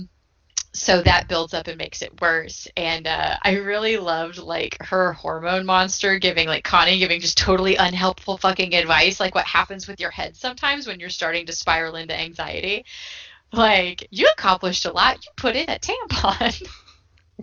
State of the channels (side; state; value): both; identical; correlation 1.00